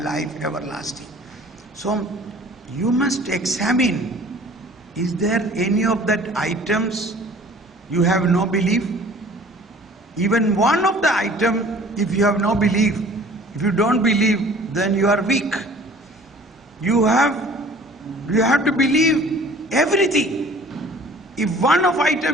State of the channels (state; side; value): normal; both; correlation 0.49